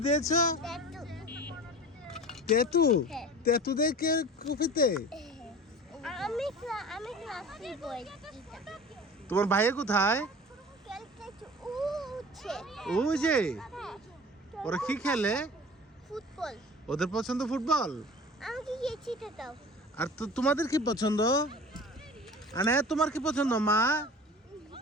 দিয়েছো? তেতু? তেতু দেয় কে কফিতে? তোমার ভাইয়া কোথায়? ওই যে ওরা কি খেলে? ফুটবল। ওদের পছন্দ ফুটবল? আমাকে গিয়ে দাও। আর তো তোমাদের কি পছন্দ? আনে তোমার কি পছন্দ মা?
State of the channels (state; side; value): normal; both; correlation 0.39